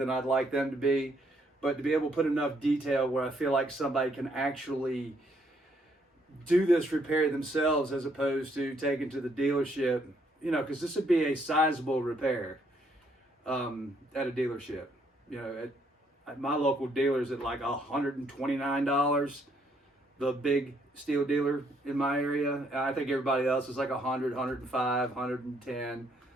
I'd like them to be. But to be able to put enough detail where I feel like somebody can actually do this repair themselves as opposed to taking to the dealership, you know, because this would be a sizable repair at a dealership. You know, at my local dealer's at like $129, the big steel dealer in my area. And I think everybody else is like 100, 105, 110.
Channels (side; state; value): both; normal; correlation 0.70